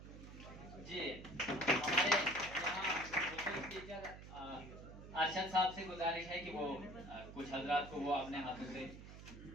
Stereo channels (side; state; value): right; noise; hum, 14 dB below the sound